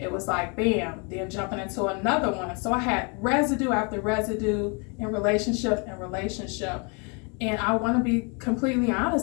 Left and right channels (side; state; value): right; quieter; 34.3 dB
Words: was like, bam, then jumping into another one. So I had residue after residue in relationship and relationship. And I want to be completely